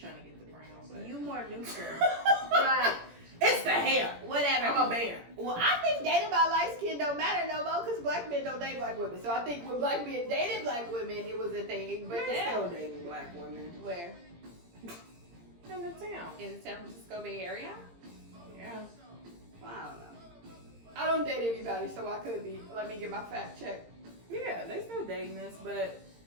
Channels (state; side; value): late; left; 17 ms